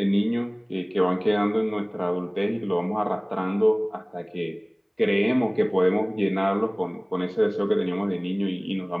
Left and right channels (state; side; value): identical; both; correlation 1.00